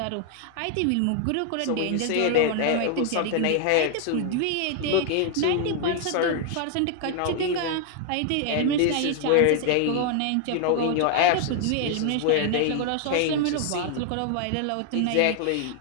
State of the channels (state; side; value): different; both; correlation 0.00